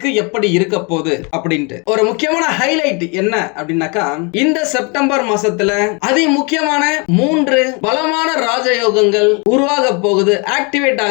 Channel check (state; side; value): quieter; right; 31.9 dB